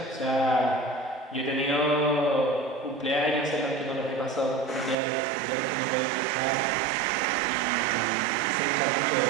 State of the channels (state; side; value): drops out; left; at 5.0 s